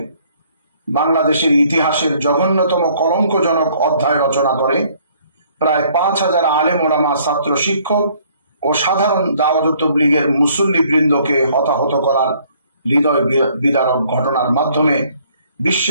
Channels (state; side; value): inverted; both; correlation -0.62